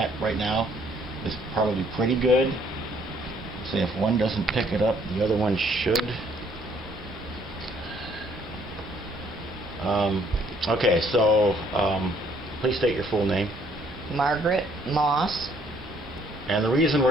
right now is probably pretty good. So if one doesn't pick it up, the other one should. Okay, so please state your full name. Margaret Moss. And the reason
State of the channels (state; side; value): normal; both; correlation 0.64